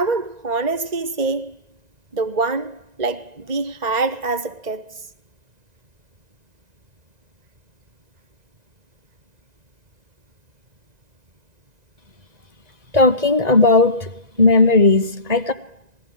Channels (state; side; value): late; left; 1.9 ms